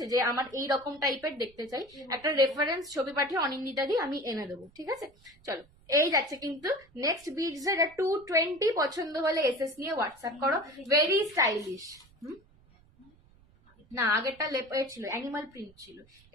যে আমার এই রকম টাইপের দেখতে চাই, একটা রেফারেন্স ছবি পাঠিয়ে অনিন্দিতা দিয়ে আমি এনে দেবো, ঠিক আছে। চলো, এই যাচ্ছে কিন্তু নেক্সট বিটস। 220, পছন্দ হলে এসএস নিয়ে হোয়াটসঅ্যাপ করো, ভেরি স্টাইলিশ। না, আগেরটা লেপার ছিল, অ্যানিমাল প্রিন্ট ছিল,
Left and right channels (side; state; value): right; noise; rumble, 29 dB below the sound